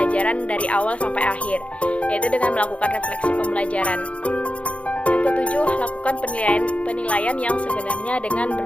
dari awal sampai akhir, yaitu dengan melakukan refleksi pembelajaran. Yang ketujuh, lakukan penilaian yang sebenarnya dengan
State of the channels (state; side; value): late; right; 0.063 ms